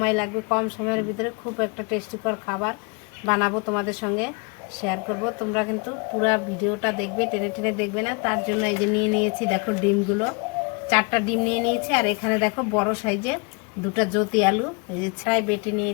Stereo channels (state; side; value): quieter; right; 31.5 dB